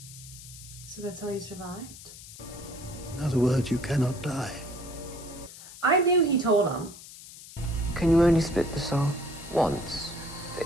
So that's how you survived? In other words, you cannot die. I knew he told him. Can you only split the soul once? For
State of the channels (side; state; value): left; noise; hiss, 16 dB below the sound